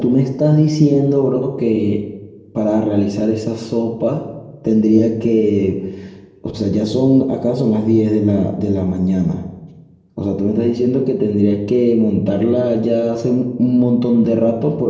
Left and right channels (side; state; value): both; identical; correlation 1.00